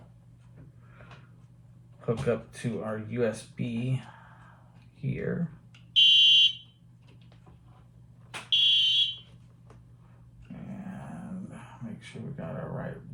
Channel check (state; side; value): identical; both; correlation 1.00